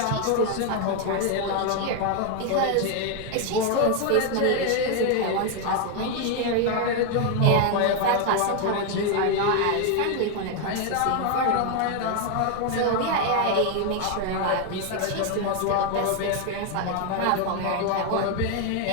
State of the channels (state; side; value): different; both; correlation 0.01